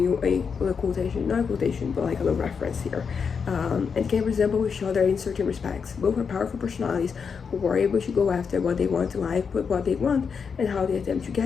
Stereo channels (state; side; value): quieter; right; 6.1 dB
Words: you a little quotation, not a quotation, but like a little reference here, and can resemble each other in certain respects. Both are powerful personalities who are able to go after what they want in life, but what they want and how they attempt to get